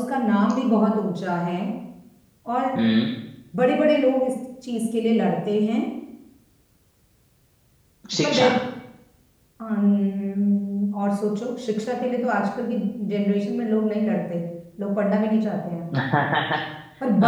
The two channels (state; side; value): identical; both; correlation 1.00